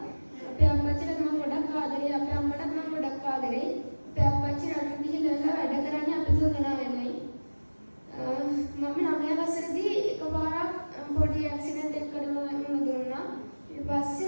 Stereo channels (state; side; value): inverted; both; correlation -1.00